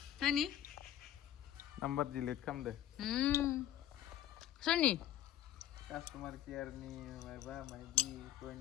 सोरनि नाम्बार डिलिट खालामदो सोरनि कास्टमार केयारनि माबा मायबि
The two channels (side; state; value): right; quieter; 11.9 dB